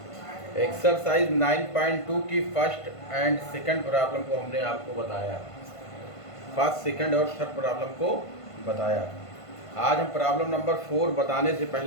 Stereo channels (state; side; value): late; right; 1.5 ms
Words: एक्सरसाइज 9.2 की फर्स्ट एंड सेकंड प्रॉब्लम को हमने आपको बताया, फर्स्ट सेकंड और थर्ड प्रॉब्लम को बताया। आज हम प्रॉब्लम नंबर 4 बताने से